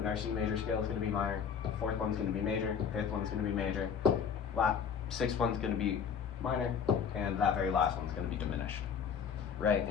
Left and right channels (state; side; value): quieter; right; 7.1 dB